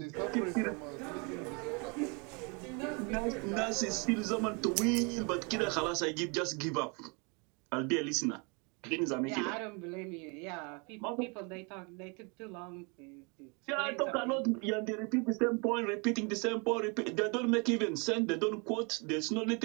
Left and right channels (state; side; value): quieter; left; 32.2 dB